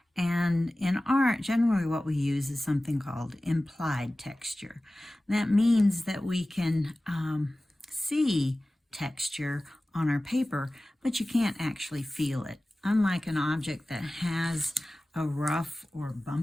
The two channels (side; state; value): both; normal; correlation 0.97